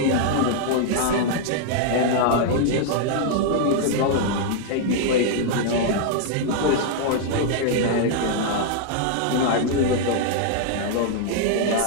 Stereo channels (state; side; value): different; both; correlation -0.01